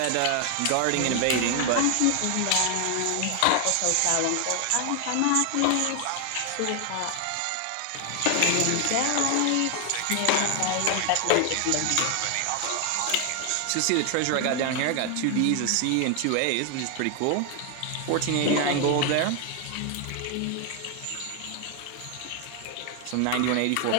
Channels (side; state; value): both; different; correlation 0.00